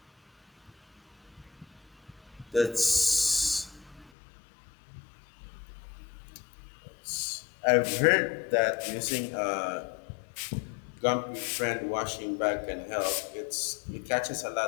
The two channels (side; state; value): right; drops out; at 4.1 s